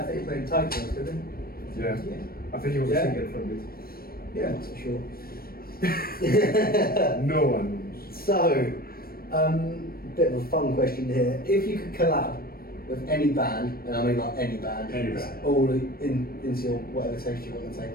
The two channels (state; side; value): late; right; 0.44 ms